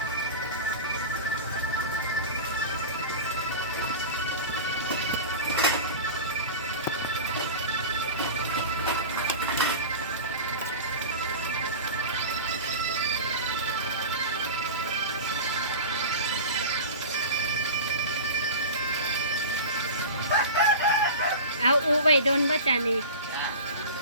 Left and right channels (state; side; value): inverted; both; correlation -0.30